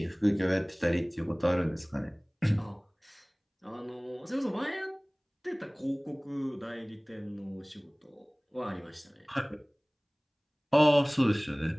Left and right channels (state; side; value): identical; both; correlation 1.00